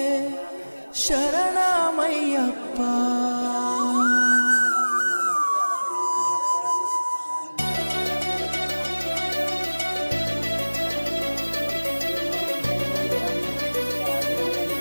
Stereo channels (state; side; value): inverted; both; correlation -1.00